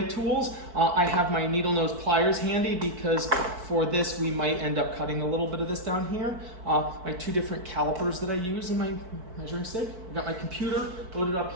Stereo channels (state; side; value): late; left; 4.6 ms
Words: I have my needle nose pliers handy because for this we might end up cutting a little bit of this down here. My 2 different calipers that I use in my measuring stick. I've got my computer loaded